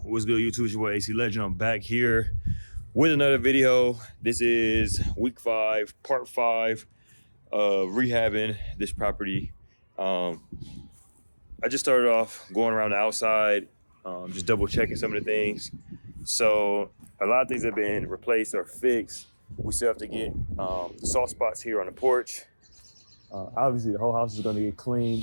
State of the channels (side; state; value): both; inverted; correlation -1.00